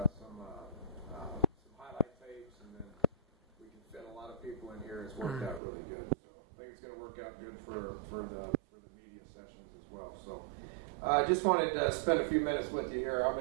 some highlight tapes, and then we can fit a lot of people in here. It's worked out really good. So I think it's going to work out good for the media sessions as well. So I just wanted to spend a few minutes with you here. I'm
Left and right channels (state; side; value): drops out; left; at 5.6 s